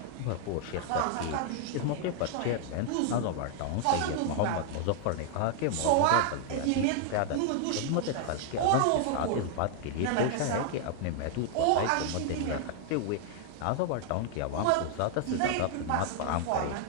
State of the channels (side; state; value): both; different; correlation 0.00